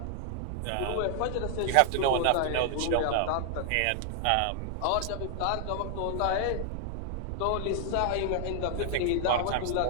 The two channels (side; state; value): both; different; correlation 0.00